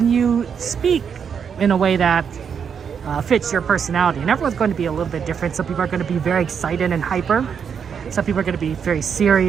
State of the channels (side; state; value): left; quieter; 7.1 dB